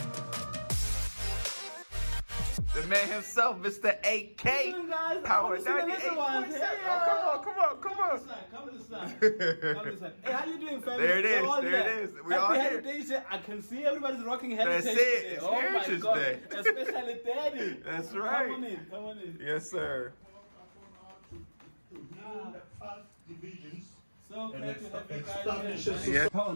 The man himself, Mr. AK. Power 98. Oh, come on. Come to the side. Hey, how you doing, family? There it is. All There here. it is. We all Happy here. Heritage Day. I can see everybody's rocking Heritage That's it. Day. It's Oh Heritage my God. Day. Especially Daddy. That's right. Come on in. Yes, sir. So glad to have you guys here. Yeah. Power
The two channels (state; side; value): inverted; both; correlation -1.00